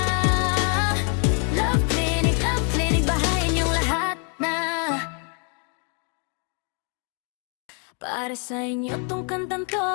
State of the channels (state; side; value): quieter; right; 39.8 dB